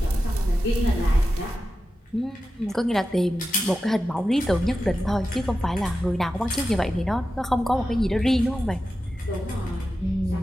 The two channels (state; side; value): normal; both; correlation 0.92